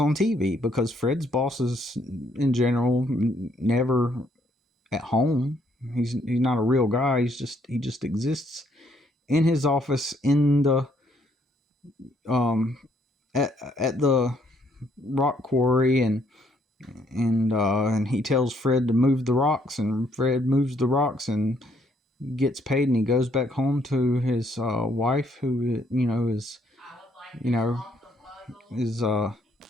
TV, because Fred's boss is in general never at home. He's not a real guy. He just exists in his office in the at the rock quarry, and he tells Fred to move the rocks, and Fred moves the rocks and gets paid, and he goes back home to his wife, who is is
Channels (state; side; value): normal; both; correlation 0.69